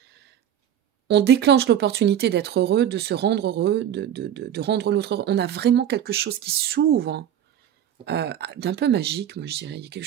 on déclenche l'opportunité d'être heureux, de se rendre heureux, de rendre l'autre heureux. On a vraiment quelque chose qui s'ouvre. d'un peu magique, moi je dirais. Il y a quelque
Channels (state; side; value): quieter; left; 10.1 dB